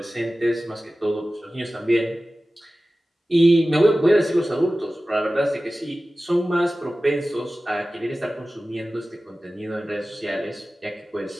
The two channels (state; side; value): normal; both; correlation 0.96